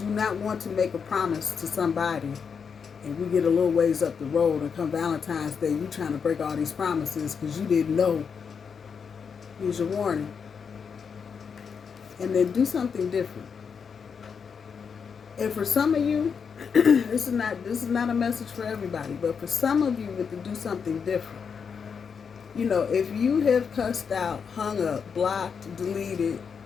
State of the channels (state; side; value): quieter; right; 6.3 dB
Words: not want to make a promise to somebody and we get a little ways up the road and come Valentine's Day, you trying to break all these promises because you didn't know. Here's your warning. And then do something different. And for some of you, this is not a message for everybody, but for some of you with to do something different. You know, if you have cussed out, hung up, blocked, deleted,